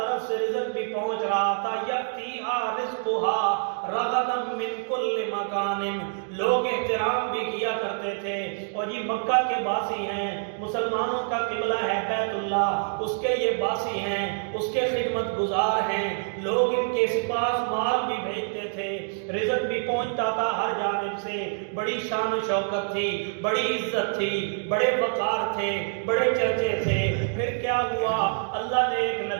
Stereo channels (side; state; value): left; silent; digital silence